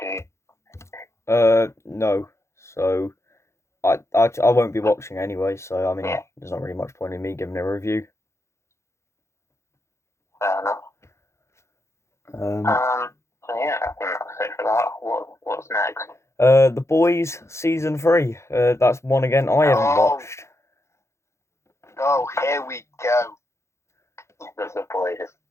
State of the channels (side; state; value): right; late; 0.13 ms